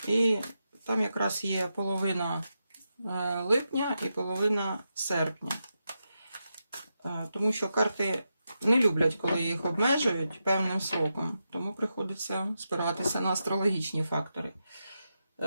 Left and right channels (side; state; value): both; inverted; correlation -0.87